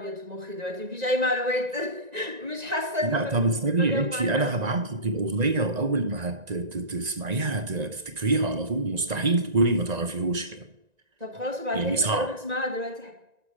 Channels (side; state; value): left; late; 1.9 ms